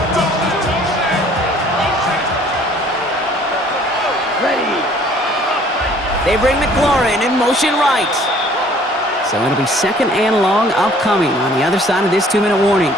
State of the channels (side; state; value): both; normal; correlation 0.56